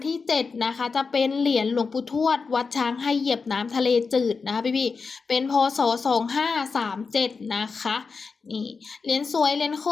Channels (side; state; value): right; quieter; 4.8 dB